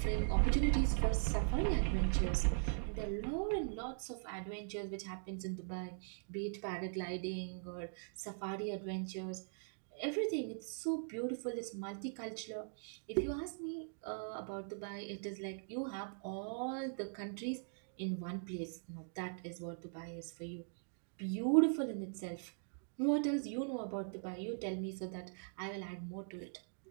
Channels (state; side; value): silent; left; digital silence